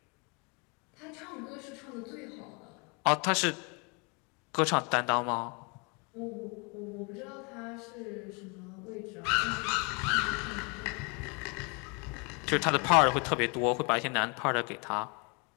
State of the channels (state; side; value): quieter; right; 33.1 dB